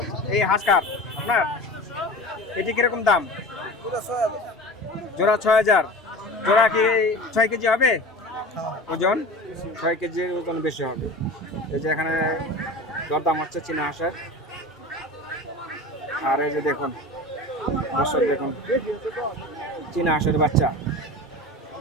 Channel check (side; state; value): both; normal; correlation 0.34